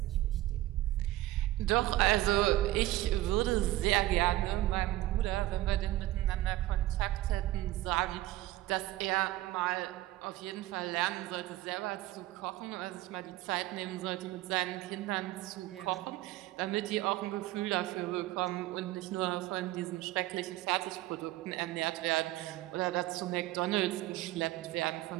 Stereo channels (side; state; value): left; quieter; 16.4 dB